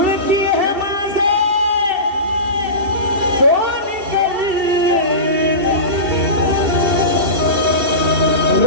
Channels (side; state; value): left; late; 2.7 ms